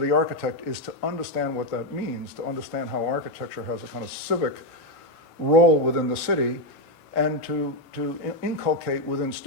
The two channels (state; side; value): late; right; 1.6 ms